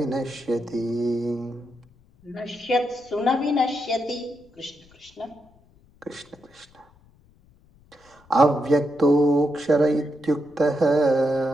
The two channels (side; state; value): left; noise; rumble, 30 dB below the sound